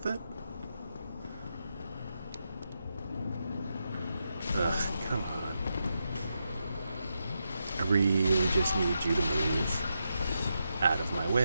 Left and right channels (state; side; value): inverted; both; correlation -0.85